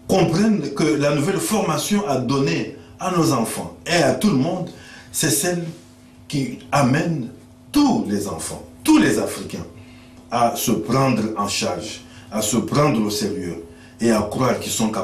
comprennent que la nouvelle formation à donner à nos enfants et à tout le monde, c'est celle qui amène tous les enfants, tous les Africains, à se prendre en charge, à se prendre au sérieux et à croire qu'ils sont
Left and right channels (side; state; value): both; identical; correlation 1.00